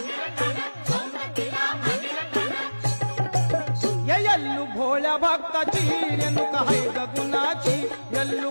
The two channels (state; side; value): inverted; both; correlation -1.00